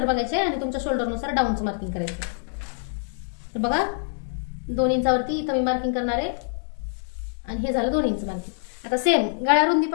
बघायची आहे आणि तुमच्या शोल्डरनुसार डाऊनचं मार्किंग करायचं. तर बघा 2 इंचावरती इथं मी मार्किंग करणार आहे आणि हे झालं 2 इंच मार्किंग. आता सेम गळारुंदी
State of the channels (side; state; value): right; silent; digital silence